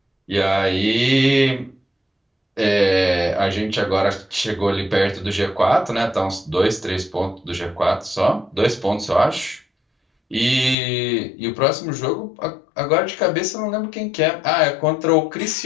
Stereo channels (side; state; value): right; drops out; at 10.8 s